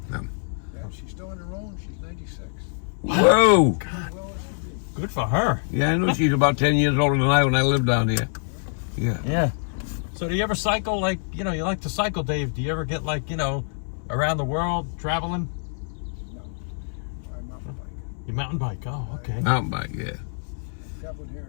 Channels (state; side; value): silent; right; 62 dB below the other